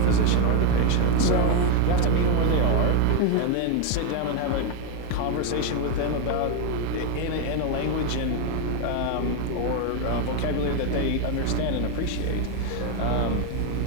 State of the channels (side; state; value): both; different; correlation 0.01